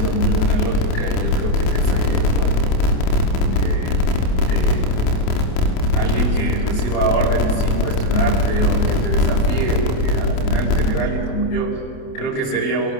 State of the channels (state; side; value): late; right; 28 ms